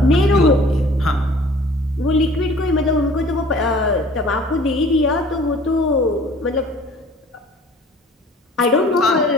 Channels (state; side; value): normal; both; correlation 0.50